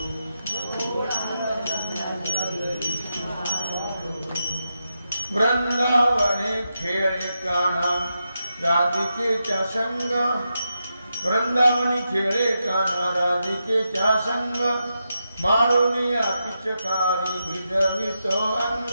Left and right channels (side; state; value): both; inverted; correlation -0.87